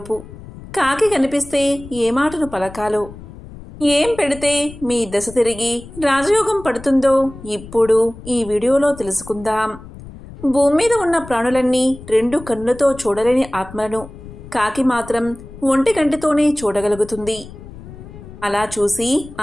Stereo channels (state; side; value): noise; left; rumble, 16 dB below the sound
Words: కాకి కనిపిస్తే ఏ మాటను పలకాలో, ఏం పెడితే మీ దశ తిరిగి రాజయోగం పడుతుందో ఇప్పుడు ఈ వీడియోలో తెలుసుకుందాం. భూమి మీద ఉన్న ప్రాణులన్నీ 2 కన్నులతో చూడలేని ఆత్మలను కాకి మాత్రం ఒంటి కంటితోనే చూడగలుగుతుంది. అలా చూసి